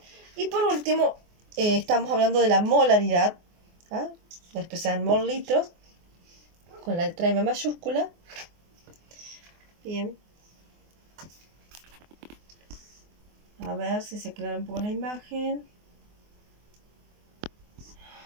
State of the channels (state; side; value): late; left; 24 ms